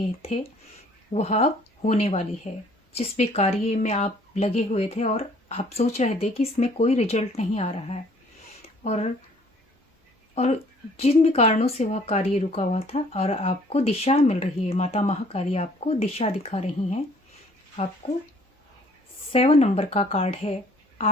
थे वह अब होने वाली है। जिस भी कार्य में आप लगे हुए थे और आप सोच रहे थे कि इसमें कोई रिजल्ट नहीं आ रहा है, और जिन भी कारणों से वह कार्य रुका हुआ था और आपको दिशा मिल रही है, माता महाकाली आपको दिशा दिखा रही हैं। आपको 7 नंबर का कार्ड है।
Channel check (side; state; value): both; normal; correlation 0.58